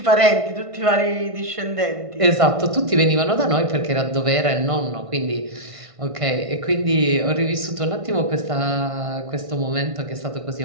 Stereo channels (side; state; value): left; late; 1.5 ms